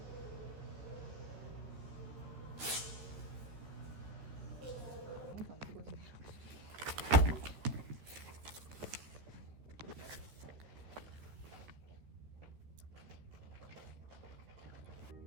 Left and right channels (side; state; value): left; late; 13 ms